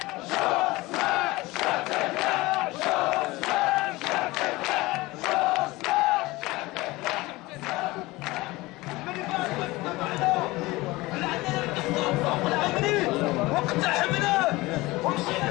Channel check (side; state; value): right; quieter; 20.8 dB